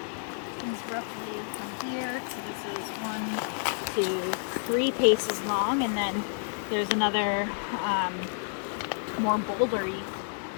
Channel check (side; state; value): right; silent; 58 dB below the other